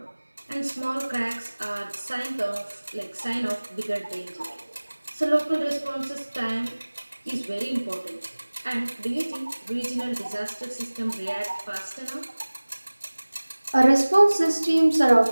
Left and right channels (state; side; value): inverted; both; correlation -1.00